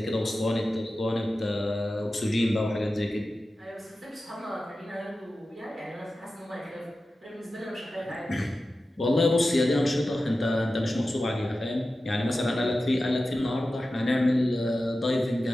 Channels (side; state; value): both; normal; correlation 0.93